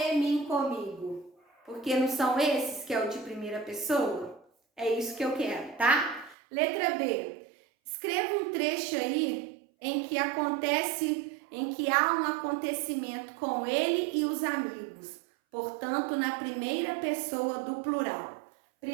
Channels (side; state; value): left; drops out; at 6.4 s